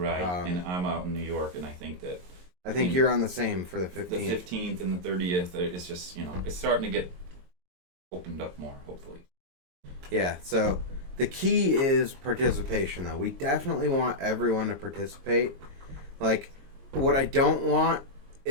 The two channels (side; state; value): left; late; 22 ms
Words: And I'm out in New York, and I think you're on the same for the 15th. The 15th and the 30th. It's just, you know, it's starting to get opened up more, hopefully. Yeah. So the key is participation, though. We definitely want everyone to participate. Like, what I don't want